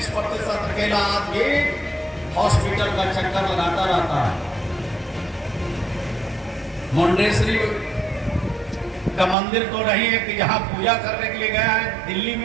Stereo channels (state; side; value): drops out; left; at 9.3 s